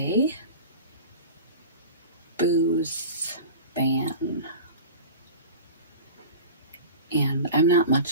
booze ban. And I'm not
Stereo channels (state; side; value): inverted; both; correlation -0.35